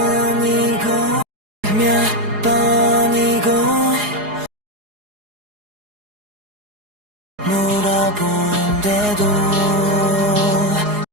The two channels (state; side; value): late; left; 4.8 ms